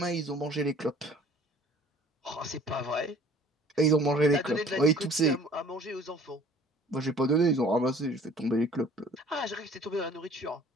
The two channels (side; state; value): both; normal; correlation 0.52